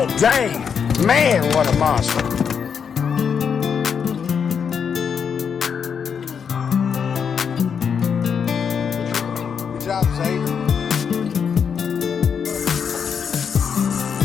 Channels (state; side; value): quieter; right; 6.9 dB